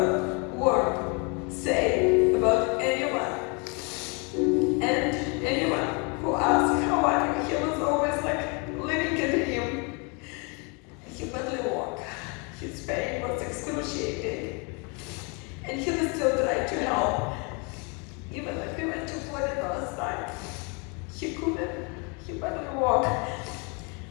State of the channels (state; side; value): quieter; right; 33.1 dB